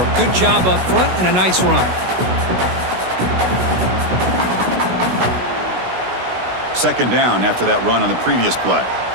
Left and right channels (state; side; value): late; left; 16 ms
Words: Good job up front and a nice run. 2nd down after that run on the previous play.